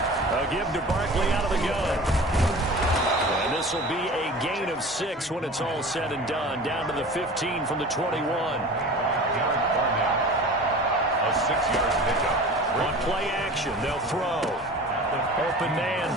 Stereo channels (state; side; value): normal; both; correlation 0.38